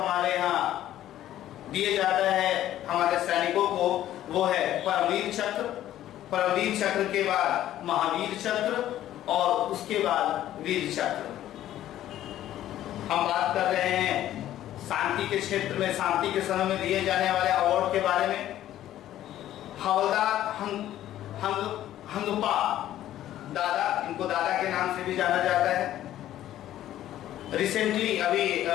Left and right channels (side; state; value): right; quieter; 12.8 dB